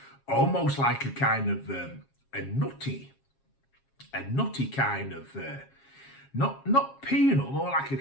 almost like a kind of a nutty kind of, not peanut, more like a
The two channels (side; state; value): right; late; 7.4 ms